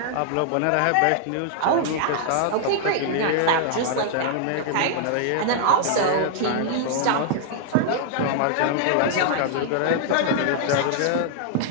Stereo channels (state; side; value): different; both; correlation -0.01